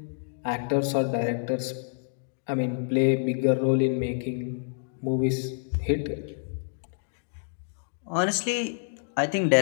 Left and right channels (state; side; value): silent; right; digital silence